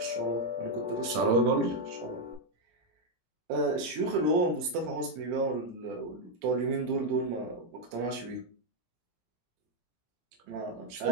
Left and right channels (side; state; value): left; late; 17 ms